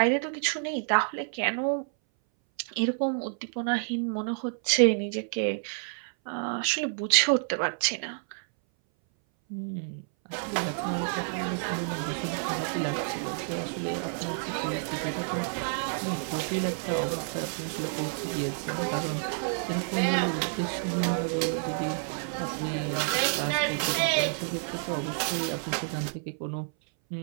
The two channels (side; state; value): left; silent; 58 dB below the other